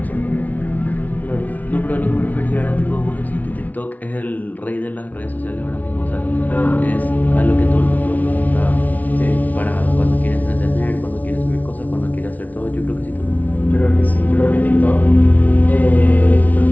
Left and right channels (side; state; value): right; late; 0.074 ms